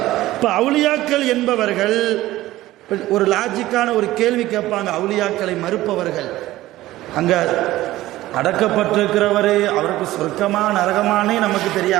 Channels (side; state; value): left; quieter; 16.2 dB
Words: இப்ப அவுலியாக்கள் என்பவர்கள் ஒரு லாஜிக்கான ஒரு கேள்வி கேட்பாங்க. அவுலியாக்களை மறுப்பவர்கள், அங்க அடக்கப்பட்டிருக்கிறவரு அவருக்கு சொர்க்கமா நரகமானே நமக்கு